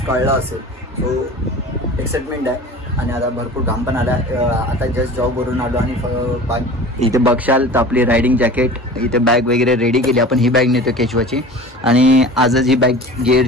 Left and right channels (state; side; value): normal; both; correlation 0.39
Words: कळलं असेल. सो एक्साइटमेंट आहे. आणि आता भरपूर घाम पण आला. आता जस्ट जॉबवरून आलो आणि इथे बघशाल तर आपली रायडिंग जॅकेट, इथे बॅग वगैरे रेडी केली. आपण ही बॅग नेतो केशवाची, आणि आजच ही बॅग